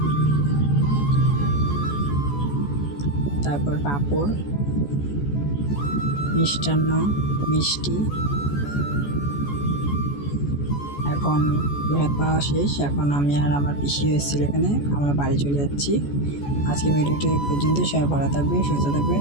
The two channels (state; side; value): late; right; 14 ms